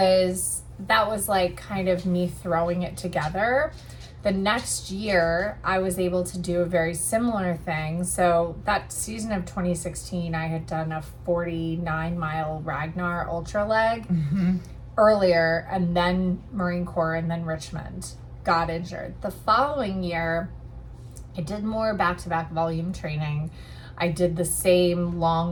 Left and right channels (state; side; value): identical; both; correlation 1.00